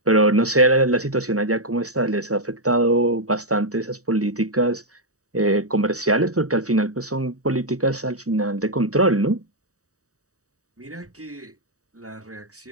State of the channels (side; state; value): left; late; 0.66 ms